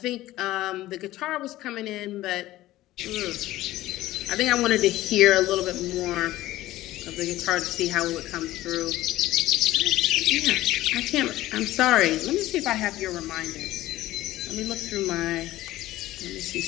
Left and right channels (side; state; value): right; quieter; 15.9 dB